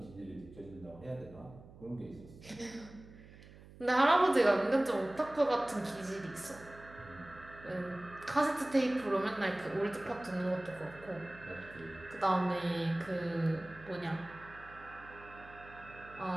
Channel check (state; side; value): noise; right; hum, 19 dB below the sound